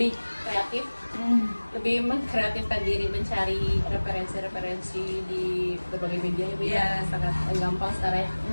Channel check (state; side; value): inverted; both; correlation -1.00